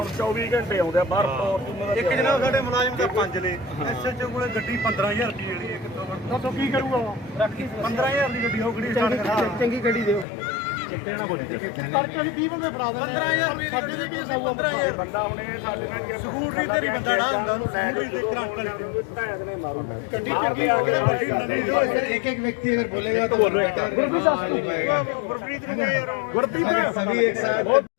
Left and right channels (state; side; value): drops out; right; at 10.2 s